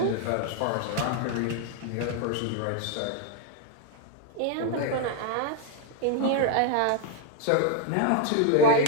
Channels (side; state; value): both; different; correlation 0.00